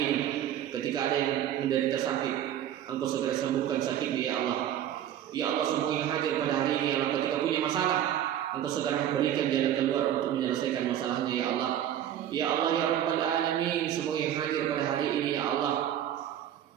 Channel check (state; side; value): quieter; left; 11.0 dB